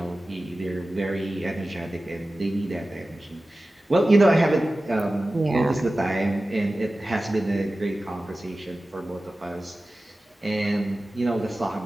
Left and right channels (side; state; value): both; normal; correlation 0.96